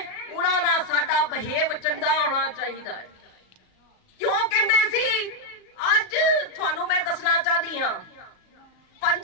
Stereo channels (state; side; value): late; right; 37 ms